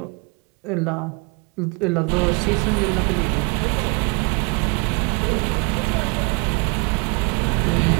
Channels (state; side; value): quieter; left; 32.3 dB